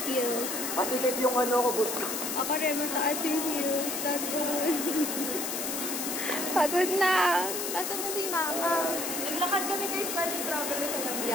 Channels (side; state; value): left; noise; hiss, 3 dB below the sound